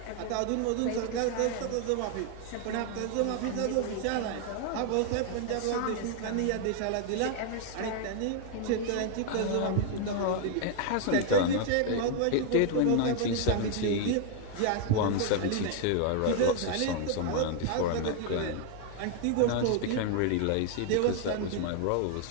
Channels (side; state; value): both; different; correlation 0.00